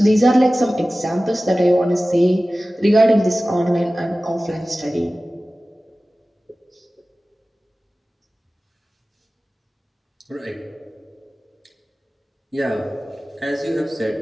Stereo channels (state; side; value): normal; both; correlation 0.96